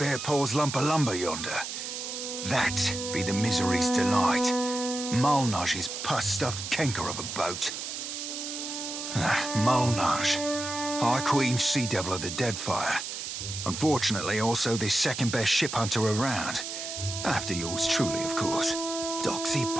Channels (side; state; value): right; noise; hiss, 6 dB below the sound